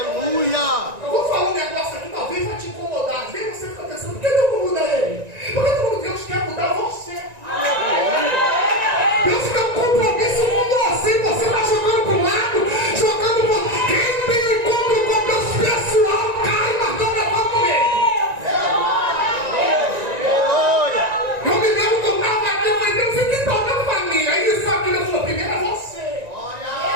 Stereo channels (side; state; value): left; late; 1.9 ms